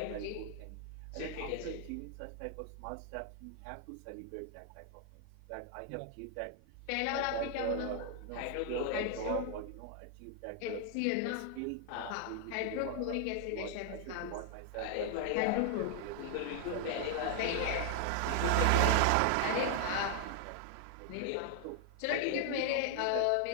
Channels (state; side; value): different; both; correlation 0.00